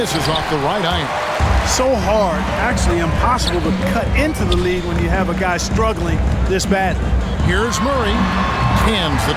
off the right iron. So hard, actually impossible to cut into the lead when you have a guy struggling this badly. Here's Murray. Cans the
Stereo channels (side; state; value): both; identical; correlation 1.00